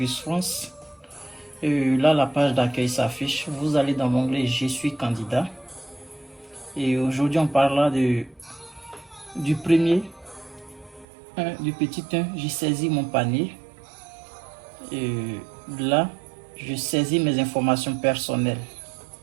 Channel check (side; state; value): left; drops out; at 11.1 s